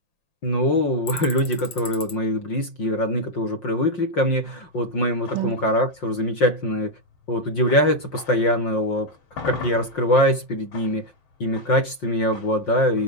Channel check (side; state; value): right; late; 5.7 ms